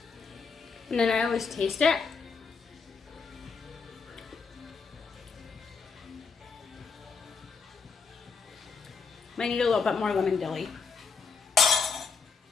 And then I always taste it. Might need a little bit more lemon dilly.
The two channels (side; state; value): right; quieter; 5.2 dB